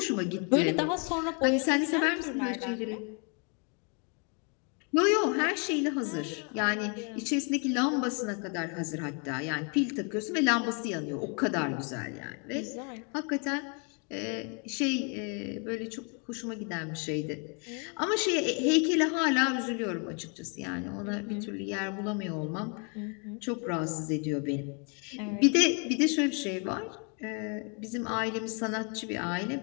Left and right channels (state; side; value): quieter; right; 36.8 dB